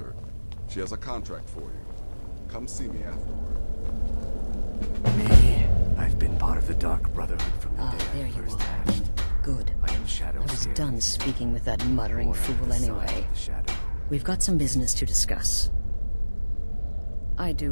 She has a contract for you. Come see me afterward. Me. I've been part of the Dark Brotherhood from the day there I you first are. hatched. Good. I am Shadow I was Scale. done speaking with that muttering Born under fool the sign anyway. of the Shadow. We've got some business to discuss. I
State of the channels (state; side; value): inverted; both; correlation -1.00